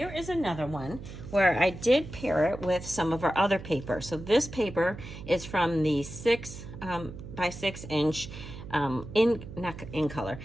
is another one where I did pair it with some of our other paper. So this paper is from the 6 by 6 inch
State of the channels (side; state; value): right; noise; hum, 12 dB below the sound